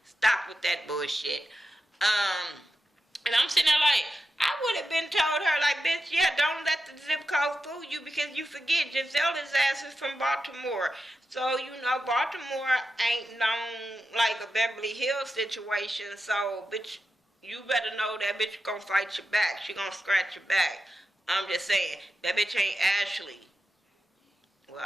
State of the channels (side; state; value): both; normal; correlation 0.90